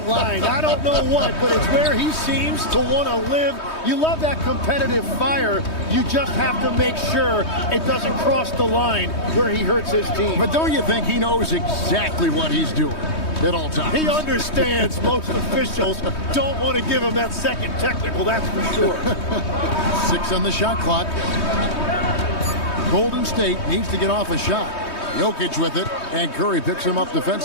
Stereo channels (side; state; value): right; late; 3.2 ms